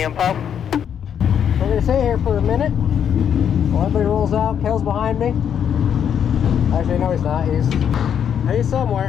info. We're gonna stay here for a minute while everybody rolls out. Kel's behind me. Actually, no, he's not. He's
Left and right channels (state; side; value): quieter; right; 8.5 dB